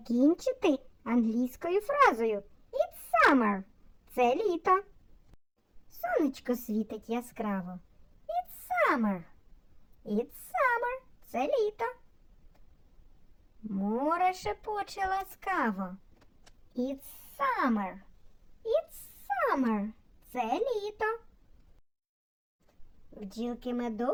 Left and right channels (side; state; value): both; identical; correlation 1.00